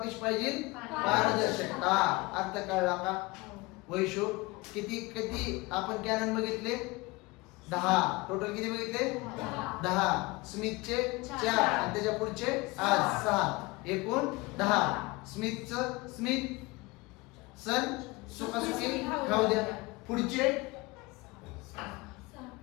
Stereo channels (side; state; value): right; quieter; 23.7 dB